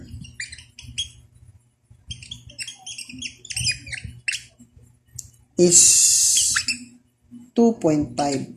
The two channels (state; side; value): identical; both; correlation 1.00